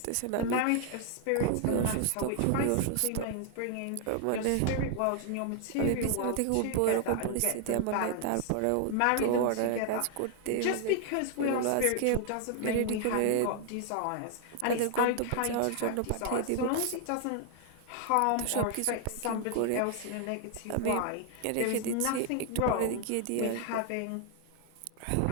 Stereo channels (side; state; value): both; different; correlation 0.00